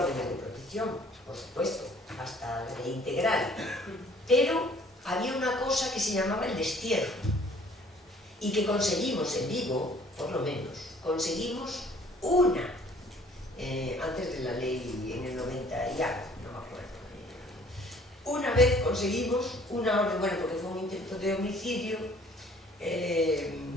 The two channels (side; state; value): both; normal; correlation 0.56